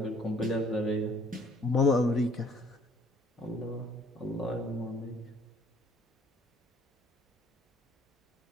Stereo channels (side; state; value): both; normal; correlation 0.58